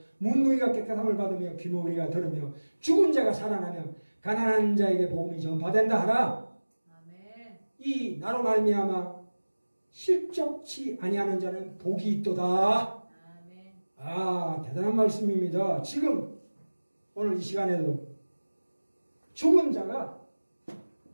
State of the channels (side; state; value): both; inverted; correlation -1.00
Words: 문둥이가 깨끗함을 받으며 귀머거리가 들으며 죽은 자가 살아나며 가난한 자에게 복음이 전파된다 하라. 아멘. 이 나로 말미암아 실족치 아니하는 자는 복이 있도다. 아멘. 아, 대단한 말씀입니다. 지금 오늘 이 시간에도 죽은 자가